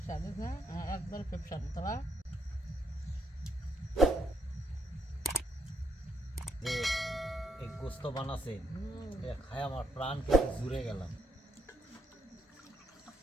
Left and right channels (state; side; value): normal; both; correlation 0.76